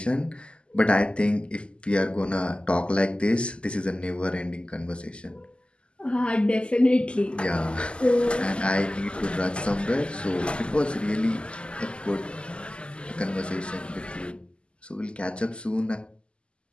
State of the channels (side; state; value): right; late; 0.052 ms